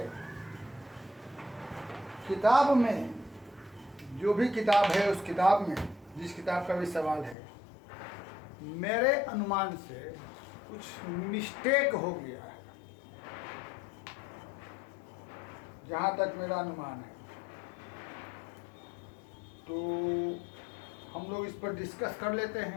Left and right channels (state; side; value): drops out; right; at 7.4 s